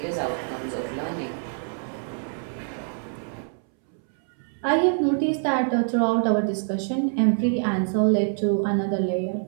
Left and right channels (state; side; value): silent; left; 62 dB below the other